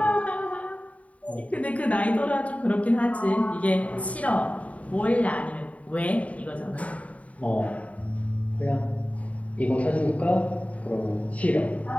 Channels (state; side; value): late; right; 0.068 ms